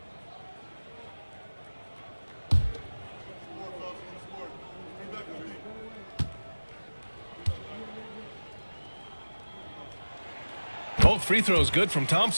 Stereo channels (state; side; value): inverted; both; correlation -1.00